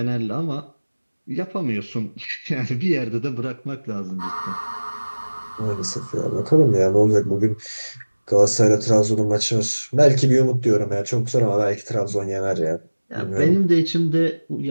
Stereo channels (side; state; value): both; inverted; correlation -1.00